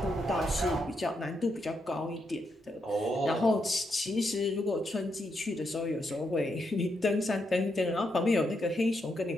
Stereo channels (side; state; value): both; normal; correlation 0.81